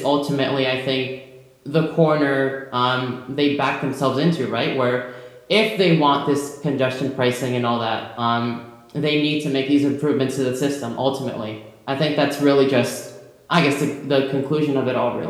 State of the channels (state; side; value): identical; both; correlation 1.00